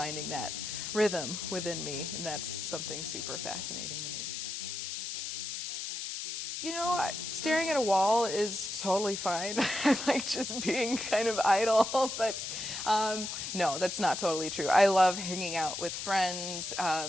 that rhythm within me, and that's something super fascinating to me. You know, staring at a wall is totally fine. I like just being kind of idle, but no, that's not totally true. I love hanging out with friends.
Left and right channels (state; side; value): noise; left; hiss, 5 dB below the sound